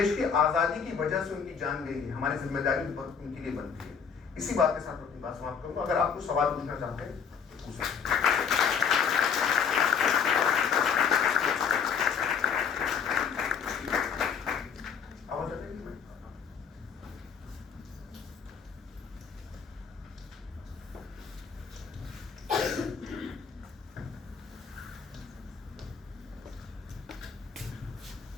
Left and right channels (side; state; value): right; quieter; 6.8 dB